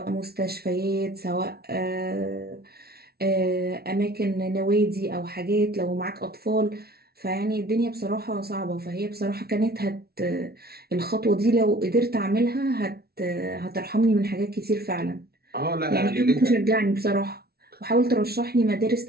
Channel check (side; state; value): left; late; 0.45 ms